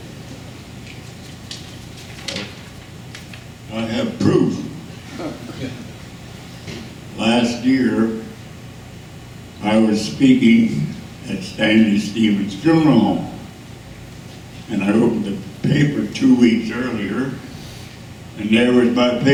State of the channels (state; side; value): identical; both; correlation 1.00